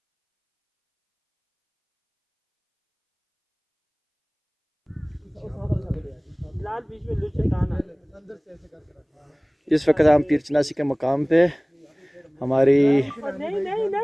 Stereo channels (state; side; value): identical; both; correlation 1.00